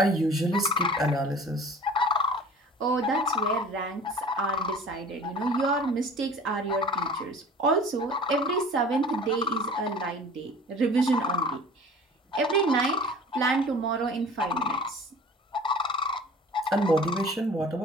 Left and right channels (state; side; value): normal; both; correlation 0.44